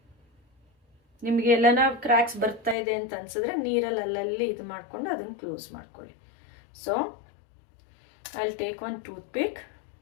ನಿಮಗೆ ಎಲ್ಲನ ಕ್ರ್ಯಾಕ್ಸ್ ಬರ್ತಾ ಇದೆ ಅಂತ ಅನ್ಸಿದ್ರೆ ನೀರಲ್ಲಿ ಅಲ್ಲಲ್ಲಿ ಇದು ಮಾಡಿಕೊಂಡು ಅದನ್ನು ಕ್ಲೋಸ್ ಮಾಡ್ಕೊಳ್ಳಿ. So I will take one tooth ಪಿಕ್,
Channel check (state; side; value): drops out; right; at 2.8 s